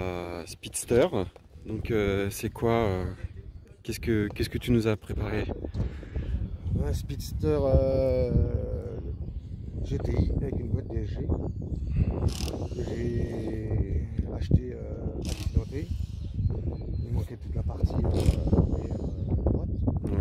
Speedster. Donc c'est quoi qu'est-ce que tu nous as préparé? Un Speedster GTI avec une boîte DSG que j'ai acheté accidenté. Il manquait toute la partie arrière droite.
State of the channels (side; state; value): both; identical; correlation 1.00